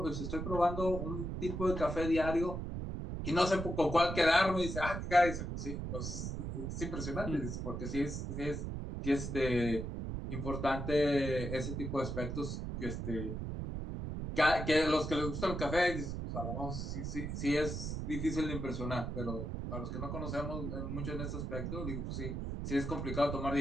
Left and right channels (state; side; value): noise; right; rumble, 4 dB below the sound